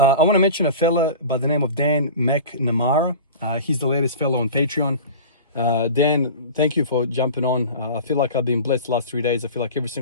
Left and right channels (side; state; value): both; inverted; correlation -0.36